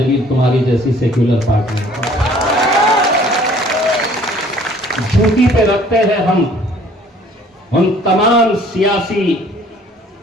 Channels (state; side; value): normal; both; correlation 0.55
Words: तुम्हारी जैसी सेक्युलर पार्टी, जूती पे रखते हैं हम उन तमाम सियासी